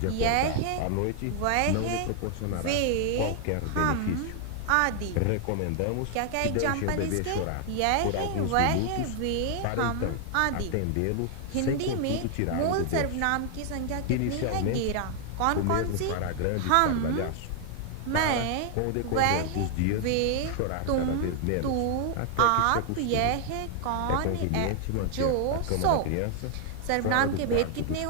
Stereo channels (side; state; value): both; different; correlation 0.00